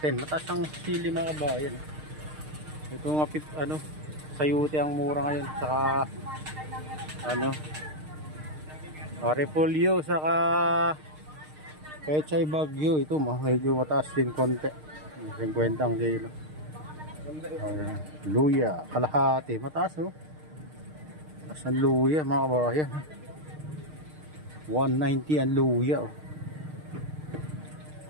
Mataas ang sili mga kabayan. Ito nga ano, sayuti ang mura ngayon, saka ano, repolyo, saka pechay bagyo. Ito medyo mataas din konti, 50 ang kilo. Luya kalahati, mataas oh. Mataas ang luya mga kabayan, 190 ang luya oh.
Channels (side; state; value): left; late; 6.5 ms